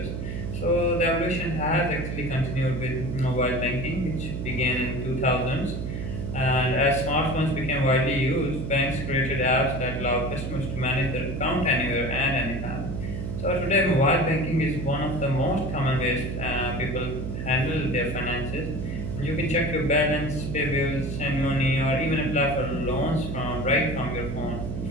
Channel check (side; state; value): right; noise; hum, 5 dB below the sound